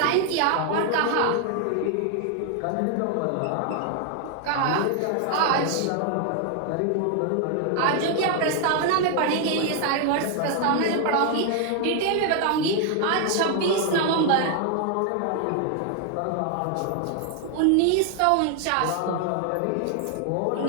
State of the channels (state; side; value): different; both; correlation 0.00